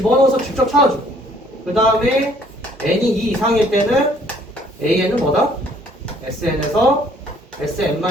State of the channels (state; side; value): normal; both; correlation 0.60